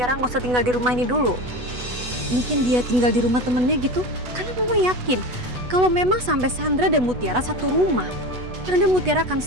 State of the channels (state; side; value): late; left; 8.1 ms